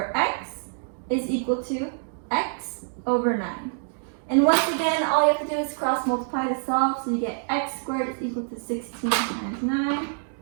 x is equal to x over 9. And once again, all you have to do is cross multiply to solve. So you get x squared is equal to 16 times 9.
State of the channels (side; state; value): left; silent; digital silence